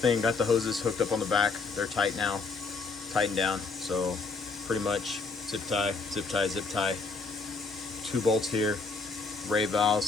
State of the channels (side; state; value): right; quieter; 4.2 dB